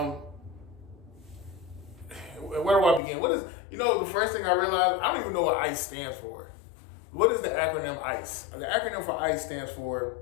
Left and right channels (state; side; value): drops out; right; at 3.0 s